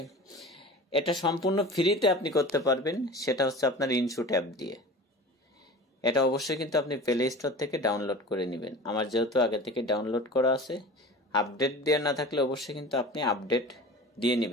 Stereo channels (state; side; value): normal; both; correlation 0.37